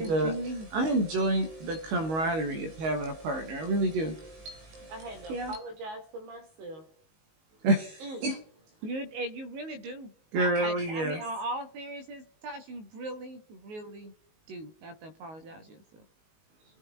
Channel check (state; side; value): late; left; 19 ms